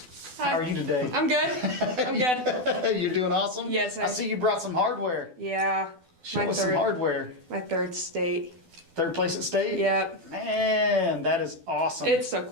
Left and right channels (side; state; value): left; late; 12 ms